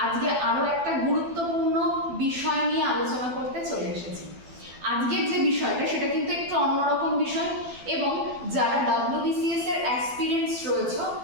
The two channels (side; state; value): left; late; 12 ms